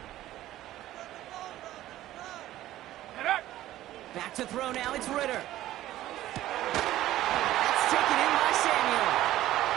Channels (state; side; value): quieter; left; 14.4 dB